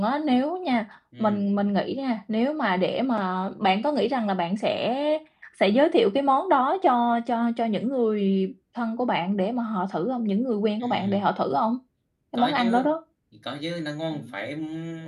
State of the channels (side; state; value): both; identical; correlation 1.00